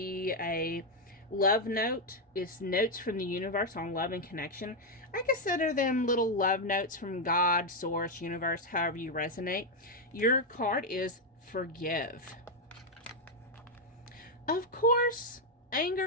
a love note. It's notes from the universe on love and connection. I consider them little love notes from God, source, universe, however you resonate. Your card is forgive. Of course,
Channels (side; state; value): both; normal; correlation 0.02